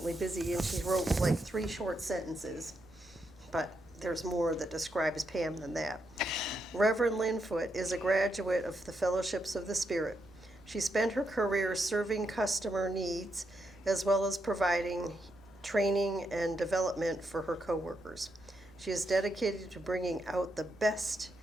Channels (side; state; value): both; normal; correlation 0.82